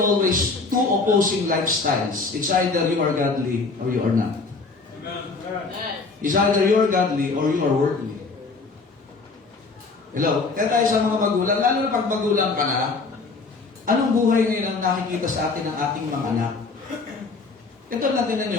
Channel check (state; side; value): quieter; right; 4.1 dB